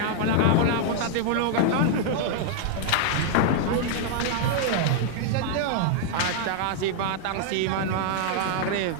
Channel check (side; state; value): both; different; correlation -0.01